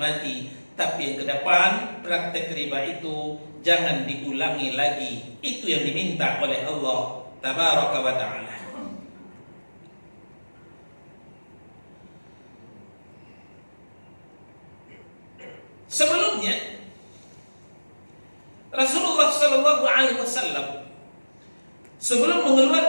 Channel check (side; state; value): both; inverted; correlation -1.00